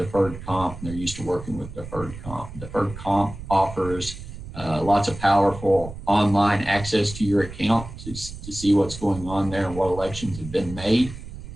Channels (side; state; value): right; noise; rumble, 12 dB below the sound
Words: comp, and they're used to working with deferred comp. Deferred comp offers lots of powerful online access to your account to see what's going on there and what elections have been made.